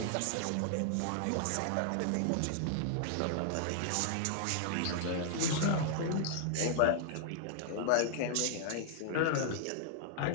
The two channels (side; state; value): both; different; correlation 0.00